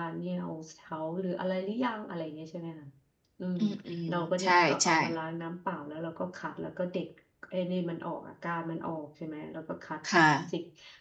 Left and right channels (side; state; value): both; identical; correlation 1.00